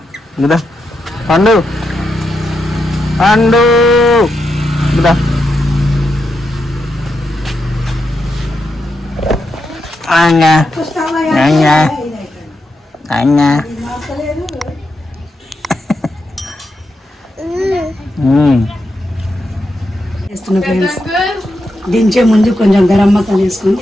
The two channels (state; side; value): normal; both; correlation 0.85